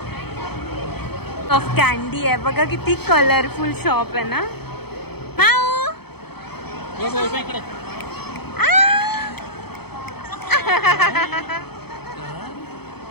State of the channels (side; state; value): right; late; 0.97 ms